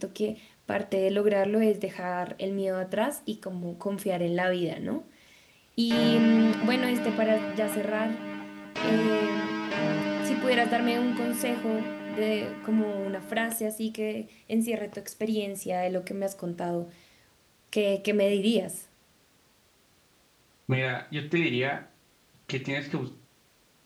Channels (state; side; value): identical; both; correlation 1.00